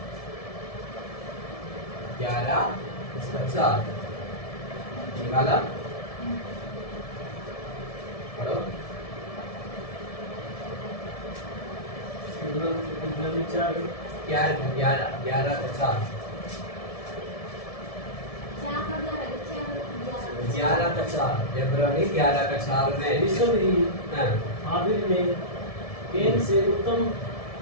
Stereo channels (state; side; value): late; right; 1.7 ms